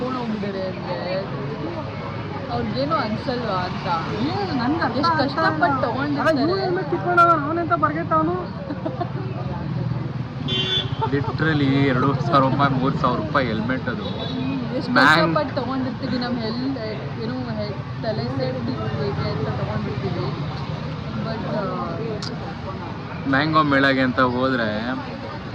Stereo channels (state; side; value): identical; both; correlation 1.00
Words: ಹೋಗಿದ್ದಾರೆ ಅಂದ್ರೆ ಅವ್ರಿಗೇನು ಅನ್ಸಲ್ವಾ ಅಂತ. ನನ್ಗೆ ಎಷ್ಟು ಕಷ್ಟಪಟ್ಟು ತಗೊಂಡಿರ್ತಾರೆ. ಹೆಲ್ಮೆಟ್ ಕಿತ್ಕೊಂಡು ಅವನೆಂತ ಬರ್ಗೆಟ್ಟವನು. ಲಿಟ್ರಲಿ 2,000 ರೂಪಾಯಿ 3,000 ರೂಪಾಯಿ ಹೆಲ್ಮೆಟ್ ಅದು. ಎಷ್ಟು ಕಷ್ಟಪಟ್ಟು ತಗೊಂಡಿರ್ತೀವಿ. ನಮ್ಮ ಏನೋ ತಲೆ ಸೇಫ್ಟಿ ಅಂತ ತಗೊಂಡಿರ್ತೀವಿ. ಬಟ್ ಮ್ಯಾಂಗೋ ಮೇಳಗೆ ಅಂತ ಹೋದ್ರೆ